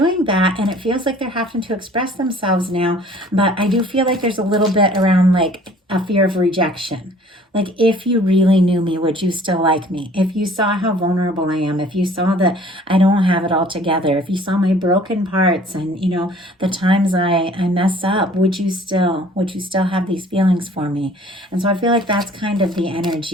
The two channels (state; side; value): normal; both; correlation 0.53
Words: that, and it feels like they're having to express themselves now. But I do feel like there's a little bit around like a fear of rejection. Like, if you really knew me, would you still like me? If you saw how vulnerable I am, if you saw that I don't have it all together, if you saw my broken parts and, you know, the times I mess up, would you still have these feelings for me? And so I feel like that's kind of the